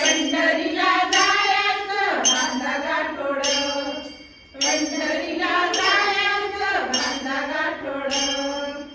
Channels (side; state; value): both; identical; correlation 1.00